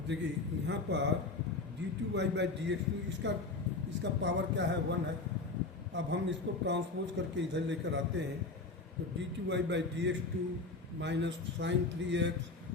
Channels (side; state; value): right; quieter; 3.7 dB